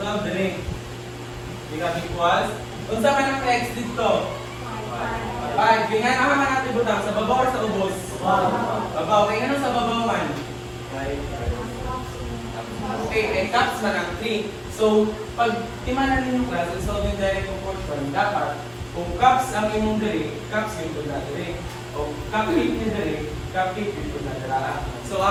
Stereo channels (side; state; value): both; identical; correlation 1.00